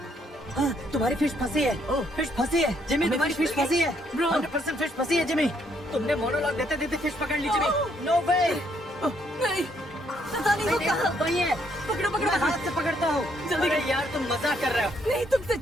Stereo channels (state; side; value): normal; both; correlation 0.71